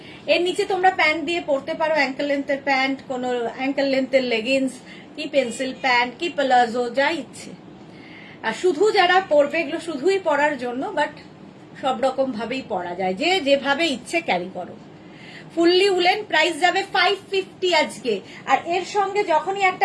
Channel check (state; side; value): identical; both; correlation 1.00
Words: এর নিচে তোমরা প্যান্ট দিয়ে পরতে পারো, অ্যাঙ্কেল লেন্থের প্যান্ট, কোনো অ্যাঙ্কেল লেন্থের লেগিংস, কি পেন্সিল প্যান্ট, কি প্লাজো, যা ইচ্ছে। আর শুধু যারা পরবে, এগুলো শুধুই পরার জন্য, বাট সব রকম ভাবেই পরা যায়, যে যেভাবে ইচ্ছে ক্যারি করো। ফুললি উলেন, প্রাইস যাবে 550 আজকে। আর এর সঙ্গে যখনই